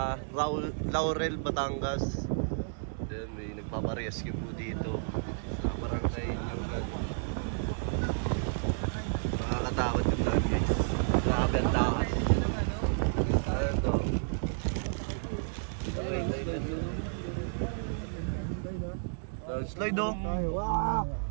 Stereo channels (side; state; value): left; silent; digital silence